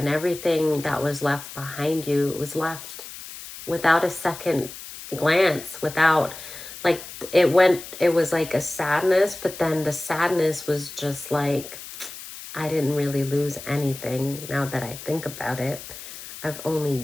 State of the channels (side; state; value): left; noise; hiss, 13 dB below the sound